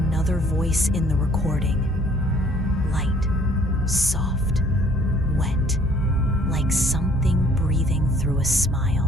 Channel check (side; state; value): both; normal; correlation 0.59